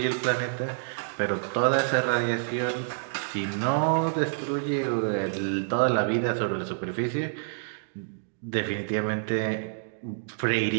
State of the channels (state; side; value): silent; left; digital silence